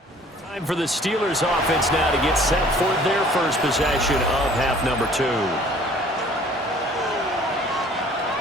For the Steelers offense now to get set for their first possession of half number 2.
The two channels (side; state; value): both; normal; correlation 0.53